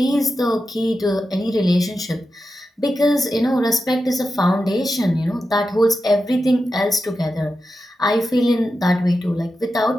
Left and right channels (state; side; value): normal; both; correlation 0.90